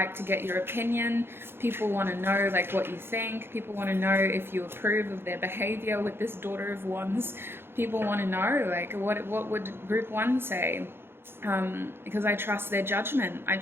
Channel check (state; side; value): late; left; 0.11 ms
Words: to get your opinion, people want to know like what you think, people want to know if you approve of their behavior with this daughter of wands, people want to know like what would group one say. Because I trust their judgment, I